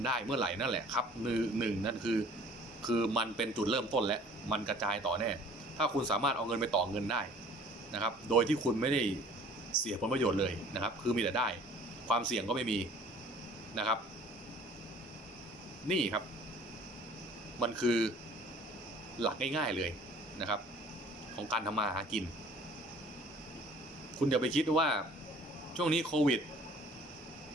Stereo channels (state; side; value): normal; both; correlation 0.51